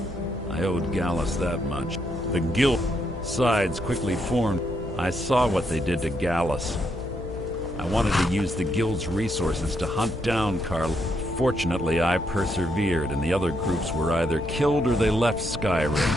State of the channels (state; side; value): noise; left; hum, 13 dB below the sound